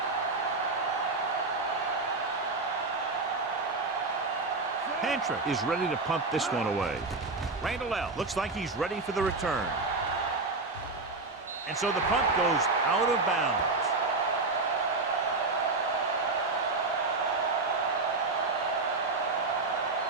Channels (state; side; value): quieter; left; 3.6 dB